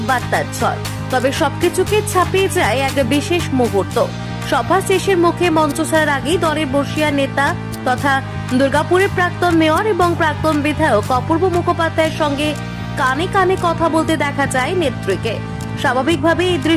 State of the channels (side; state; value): both; identical; correlation 1.00